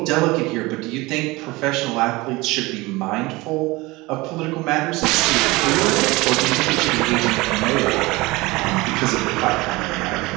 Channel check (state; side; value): quieter; left; 22.0 dB